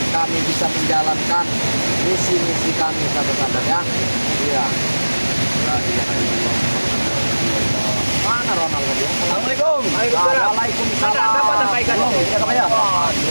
kami bisa menjalankan misi-misi kami sahabat-sahabat ya. Iya. Mana Ronald tadi? Assalamualaikum. Waalaikumsalam. Waalaikumsalam. Dapat apa ikannya? Belum, ya, Kak, ya?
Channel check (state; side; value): inverted; both; correlation -1.00